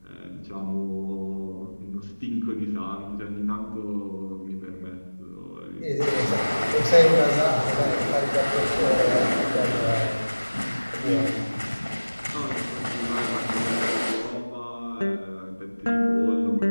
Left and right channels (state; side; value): inverted; both; correlation -1.00